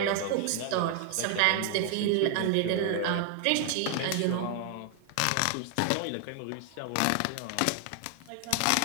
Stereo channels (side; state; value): both; different; correlation 0.00